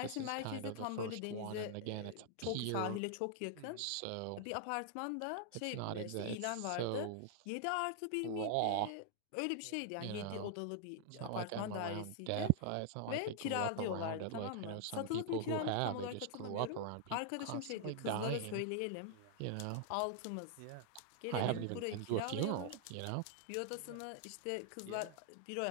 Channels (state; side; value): different; both; correlation -0.01